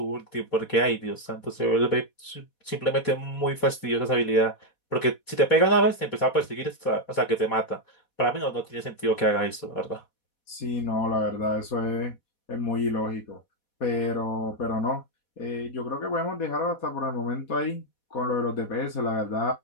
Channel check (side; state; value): right; late; 4.2 ms